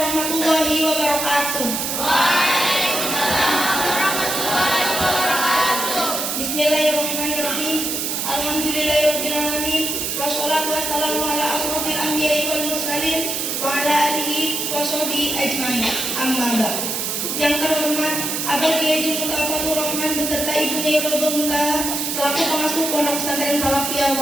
wabarakatuh. Bismillahirrahmanirrahim. Alhamdulillahirabbil alamin. Wassalatu wassalamu ala asrofil anbiya'i wal mursalin wa ala alihi wa sahbihi ajmain. Amma ba'd. Yang terhormat Abah Kiai Haji Mutafatur Rahman beserta ibunya Rodo Muntaha selaku pengasuh Pondok Pesantren Salafiyah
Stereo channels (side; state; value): right; noise; hiss, 2 dB below the sound